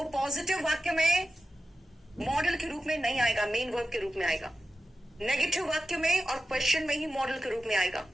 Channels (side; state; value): both; normal; correlation 0.92